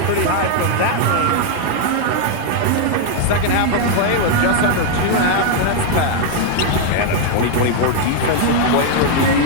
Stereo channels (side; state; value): both; different; correlation 0.00